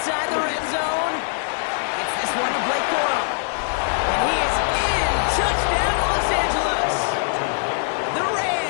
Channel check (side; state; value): right; silent; 62 dB below the other